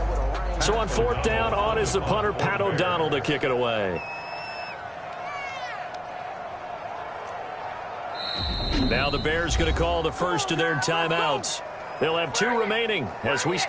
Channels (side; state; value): both; identical; correlation 1.00